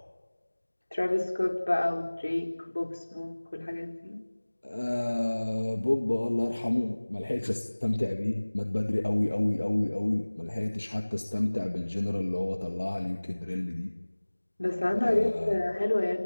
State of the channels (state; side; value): inverted; both; correlation -1.00